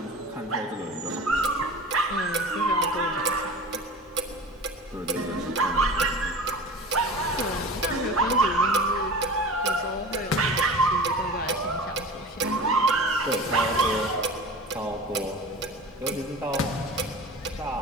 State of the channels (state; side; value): normal; both; correlation 0.35